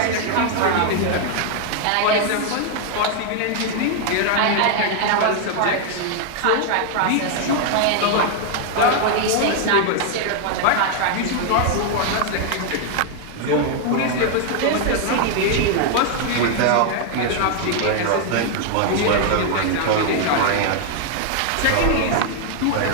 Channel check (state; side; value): different; both; correlation 0.00